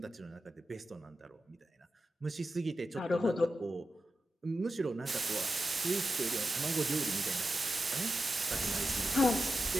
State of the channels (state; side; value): normal; both; correlation 0.91